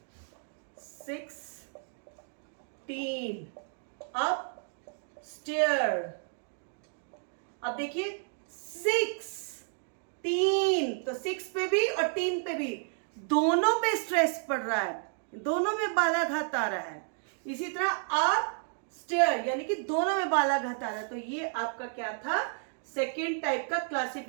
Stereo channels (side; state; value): left; silent; 57 dB below the other